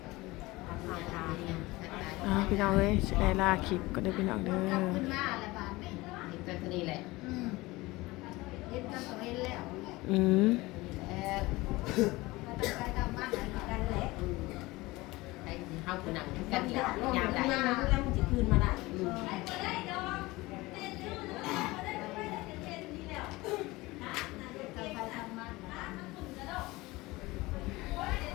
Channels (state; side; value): quieter; right; 21.0 dB